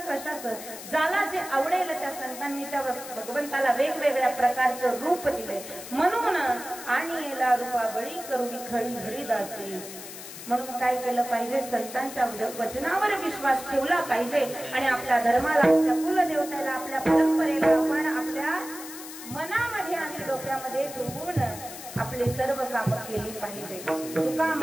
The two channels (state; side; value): noise; left; hiss, 12 dB below the sound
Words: कशाचं. ज्याला जे आवडेल त्या संतांनी त्या भगवंताला वेगवेगळ्या प्रकारचं रूप दिलंय. म्हणून आणि याला रूपाबळी करुणी खडी हरिदासी. म्हणून काय केलं पाहिजे? संतांच्या वचनावर विश्वास ठेवला पाहिजे आणि आपल्या धर्माला, आपल्या कुलदेवतेला, आपल्या परंपरेला आपण आपल्या मनामध्ये आणि डोक्यामध्ये ठेवून आपले सर्व कामं केली पाहिजे. तुका